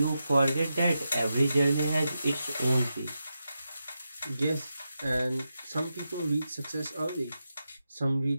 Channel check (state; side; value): inverted; both; correlation -0.88